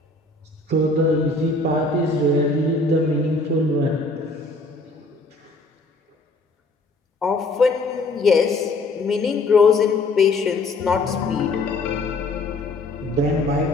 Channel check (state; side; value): quieter; right; 3.1 dB